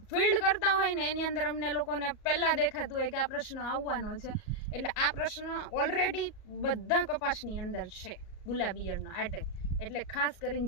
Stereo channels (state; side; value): late; right; 38 ms